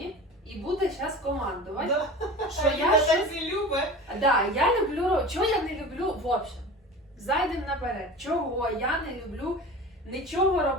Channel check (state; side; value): normal; both; correlation 0.35